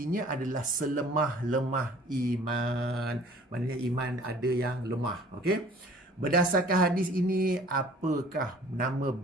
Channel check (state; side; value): normal; both; correlation 0.51